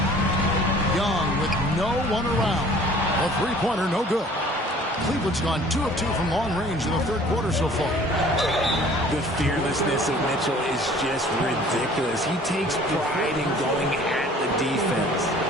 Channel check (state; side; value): normal; both; correlation 0.51